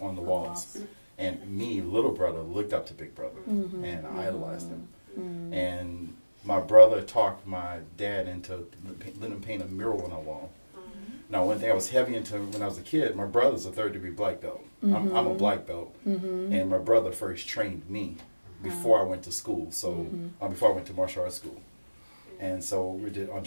on the walls. And me, little brother, looked up to Big Brother, and I idolized him. And my brother talked my dad into letting him paint a mural on our wall. Now, one thing I was heavy into when I was a kid, my brother's a 3rd-degree black belt. I'm a black belt. And my brother first trained me before I went to school, so before I went to martial arts school. And so we did on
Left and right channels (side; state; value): both; inverted; correlation -1.00